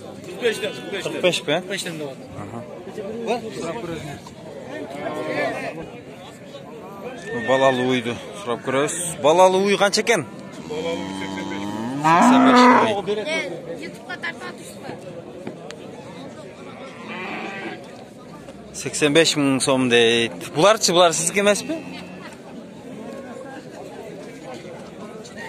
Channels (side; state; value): both; identical; correlation 1.00